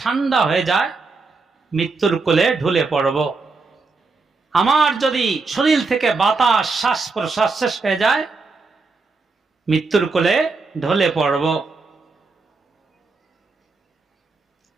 ঠান্ডা হয়ে যায়, মৃত্যুর কোলে ঢলে পড়ব। আমার যদি শরীর থেকে বাতাস, শ্বাস প্রশ্বাস শেষ হয়ে যায়, মৃত্যুর কোলে ঢলে পড়ব।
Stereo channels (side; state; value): left; quieter; 4.0 dB